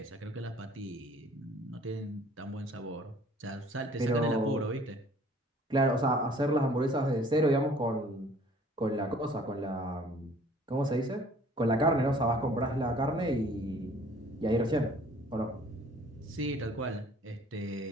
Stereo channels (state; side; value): normal; both; correlation 0.54